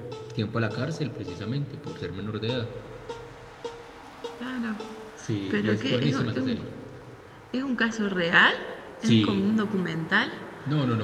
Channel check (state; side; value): identical; both; correlation 1.00